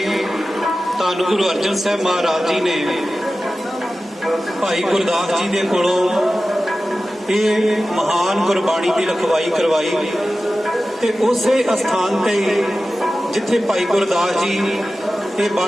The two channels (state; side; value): normal; both; correlation 0.95